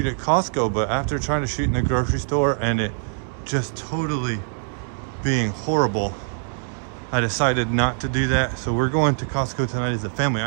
at Costco, but after trying to shoot in the grocery store and it just totally being horrible, I decided not to do that. So we're going to Costco tonight as a family.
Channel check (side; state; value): left; silent; digital silence